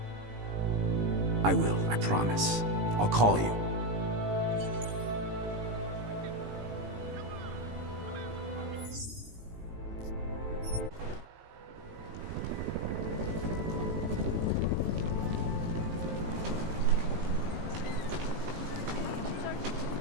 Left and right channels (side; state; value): left; late; 18 ms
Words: I will, I promise. I'll call you.